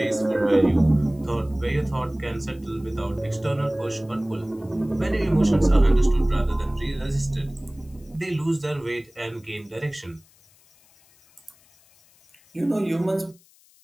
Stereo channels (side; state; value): left; noise; hiss, 30 dB below the sound